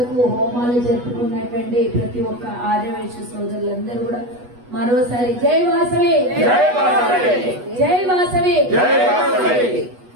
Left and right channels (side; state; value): left; late; 8.2 ms